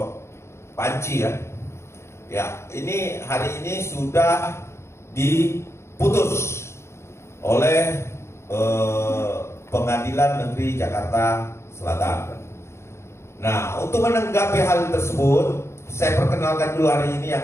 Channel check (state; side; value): late; right; 0.13 ms